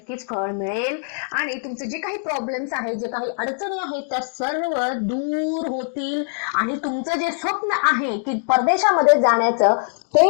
फळ मिळेल आणि तुमचे जे काही प्रॉब्लेम्स आहेत, जे काही अडचणी आहेत त्या सर्व दूर होतील आणि तुमचं जे स्वप्न आहे की परदेशामध्ये जाण्याचं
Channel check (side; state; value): right; silent; digital silence